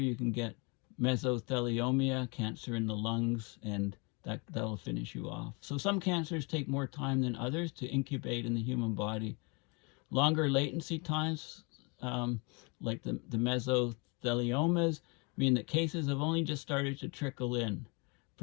can get mesothelioma, cancer in the lungs, and that'll finish you off. So some cancers take more time than others to incubate in the human body. Longer latency times, like the mesotheliomas, mean that cases have only just started to trickle in.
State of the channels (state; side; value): quieter; right; 30.9 dB